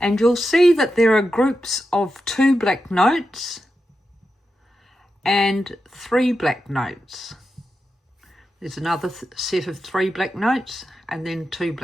you'll see that there are groups of 2 black notes and 3 black notes. There's another set of 3 black notes and then 2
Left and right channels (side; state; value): both; normal; correlation 0.89